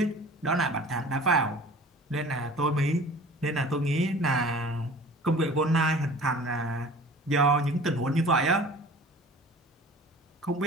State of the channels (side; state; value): both; normal; correlation 0.44